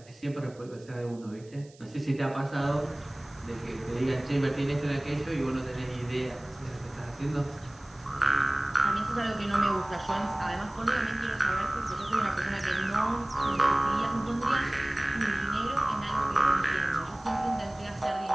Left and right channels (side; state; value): right; noise; hiss, 27 dB below the sound